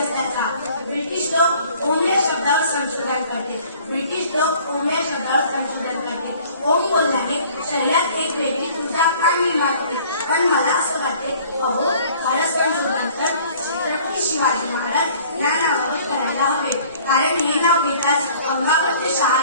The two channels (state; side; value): inverted; both; correlation -0.53